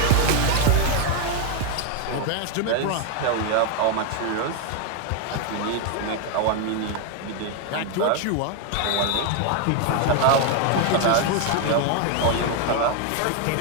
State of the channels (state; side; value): different; both; correlation 0.01